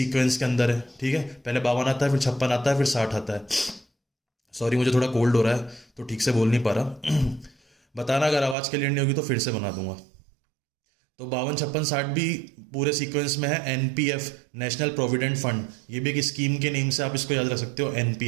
के अंदर है। ठीक है, पहले 52 आता है, फिर 56 आता है, फिर 60 आता है। सॉरी, मुझे थोड़ा कोल्ड हो रहा है तो ठीक से बोल नहीं पा रहा। बताना अगर आवाज़ क्लियर नहीं होगी तो फिर से बना दूंगा। तो 52, 56, 60 भी पूरे सीक्वेंस में है। एनपीएफ नेशनल प्रोविडेंट फंड, ये भी एक स्कीम के नेम से आप इसको याद रख सकते हो,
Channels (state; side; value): drops out; left; at 8.6 s